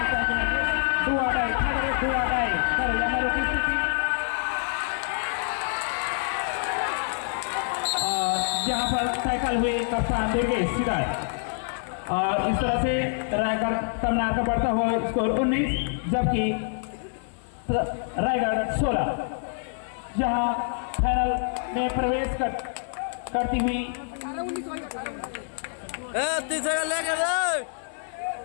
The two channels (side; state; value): right; silent; 61 dB below the other